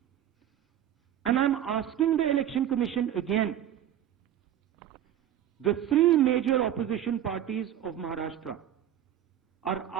And I am asking the Election Commission again. The three major opposition parties of Maharashtra are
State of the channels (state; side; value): quieter; left; 11.1 dB